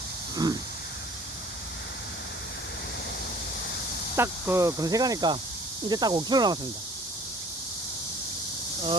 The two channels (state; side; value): normal; both; correlation 0.51